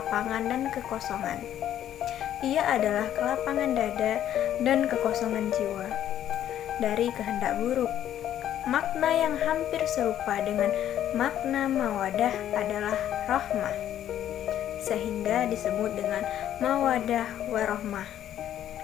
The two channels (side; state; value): right; quieter; 11.2 dB